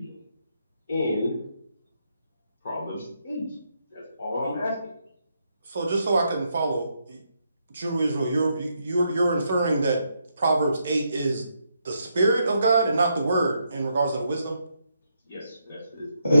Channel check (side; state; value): both; inverted; correlation -0.79